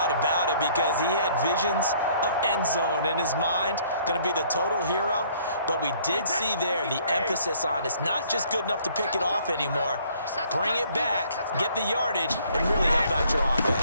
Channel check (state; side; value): inverted; both; correlation -0.60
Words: about it, because he had visions of end zone in his mind. Going to be the total hero. But we did see there the emphasis on it's not just good enough to pick it off anymore. Bring it back, get the yardage, and really help out your